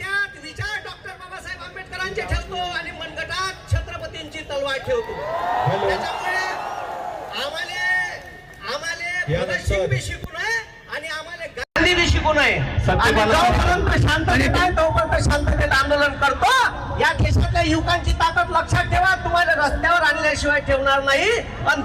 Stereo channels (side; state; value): both; identical; correlation 1.00